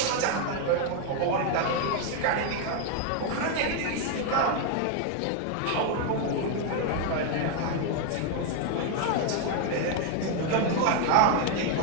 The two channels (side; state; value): both; different; correlation 0.00